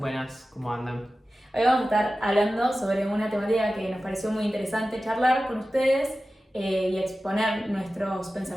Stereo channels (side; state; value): both; normal; correlation 0.95